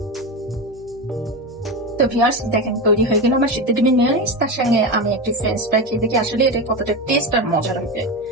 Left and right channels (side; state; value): both; normal; correlation 0.18